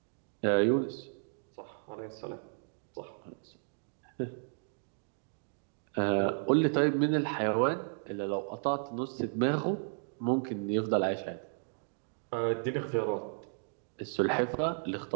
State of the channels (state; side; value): silent; left; digital silence